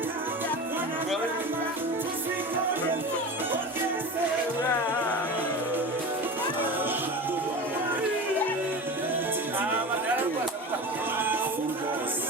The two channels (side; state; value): both; normal; correlation 0.30